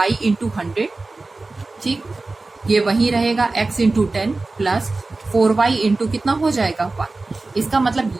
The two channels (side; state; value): left; quieter; 3.4 dB